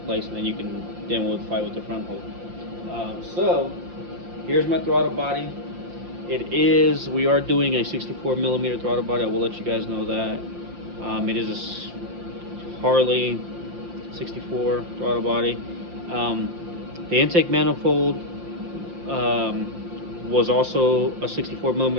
place, and then you can fight with the front hold. So here's my throttle body. We are doing a 64 millimeter throttle body. I will let you guys know that. It is a Harley 64 throttle body. The intake manifold was also a 64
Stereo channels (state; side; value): late; left; 5.7 ms